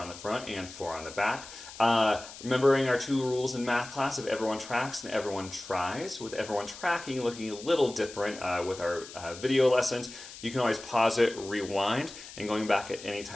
the front and 4 on the back. Remembering our 2 rules in math class of everyone tracks and everyone tries, with everyone tracking looking a little different with our video lessons. You can always pause it, rewind, and going back at any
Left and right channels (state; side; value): noise; left; hiss, 15 dB below the sound